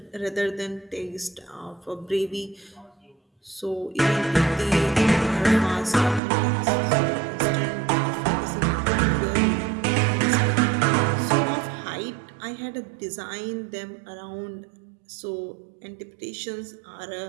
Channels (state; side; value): drops out; left; at 6.2 s